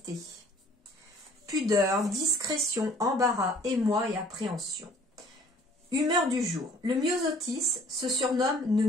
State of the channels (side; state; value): both; normal; correlation 0.55